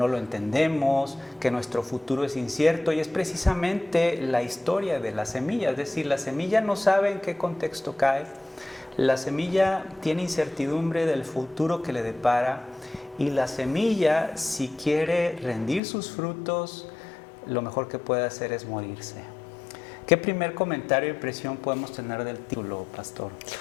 lo entendemos, que nuestro futuro es incierto, y es precisamente la historia de la semilla. Es decir, la semilla no sabe en qué contexto cae, la semilla tiene incertidumbre del futuro que le depara, y la semilla, si quiere rendir sus frutos, lo mejor que puede hacer es morirse. ¿Qué primer comentario e impresión podemos tener del título, pastor?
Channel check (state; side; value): drops out; right; at 15.8 s